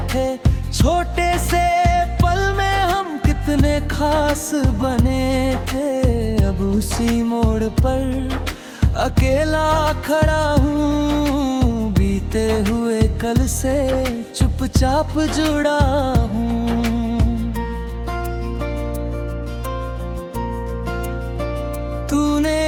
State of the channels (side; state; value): both; identical; correlation 1.00